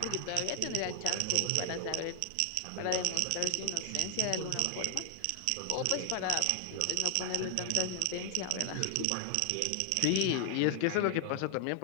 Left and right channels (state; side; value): different; both; correlation 0.00